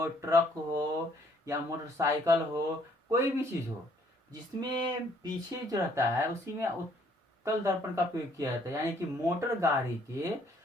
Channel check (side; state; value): both; normal; correlation 0.64